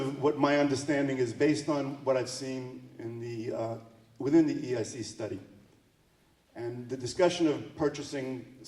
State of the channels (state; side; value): identical; both; correlation 1.00